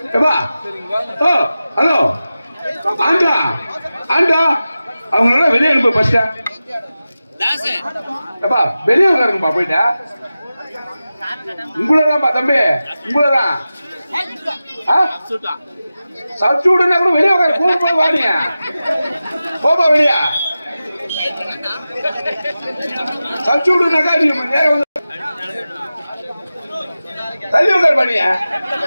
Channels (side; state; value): both; inverted; correlation -0.94